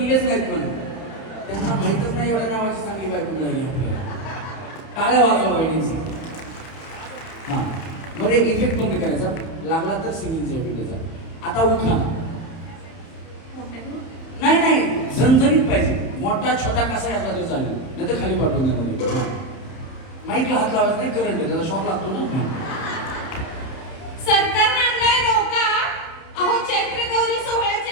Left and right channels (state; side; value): late; right; 30 ms